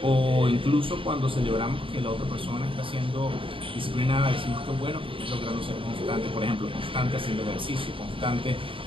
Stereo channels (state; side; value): late; left; 0.25 ms